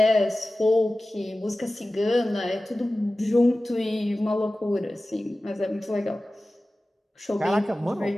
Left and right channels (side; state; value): both; normal; correlation 0.96